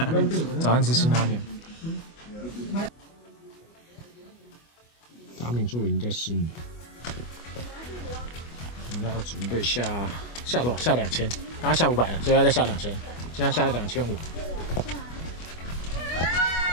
早上吃辛拉面。达敏树已经在试你，我们要准备下多少？下2000，刚刚下500了，所以要再下2000，现在下2500。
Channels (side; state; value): right; late; 25 ms